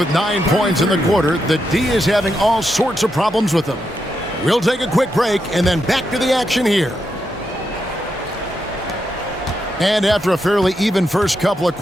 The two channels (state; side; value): normal; both; correlation 0.83